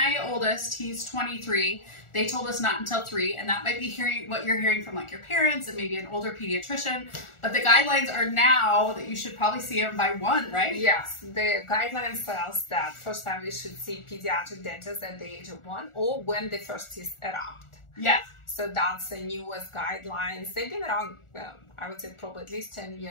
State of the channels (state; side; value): late; right; 1.4 ms